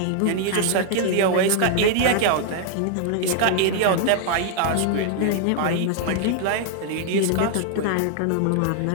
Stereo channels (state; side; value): different; both; correlation 0.00